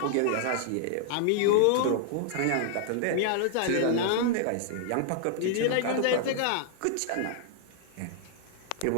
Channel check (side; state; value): both; different; correlation 0.00